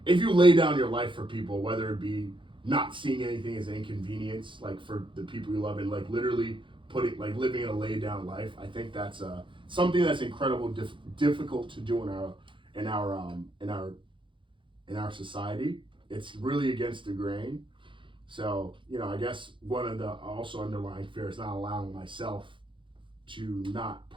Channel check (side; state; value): left; late; 0.24 ms